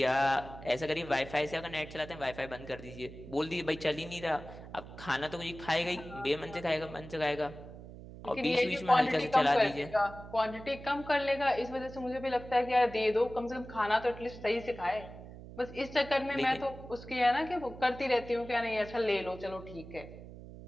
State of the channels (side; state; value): right; noise; hum, 14 dB below the sound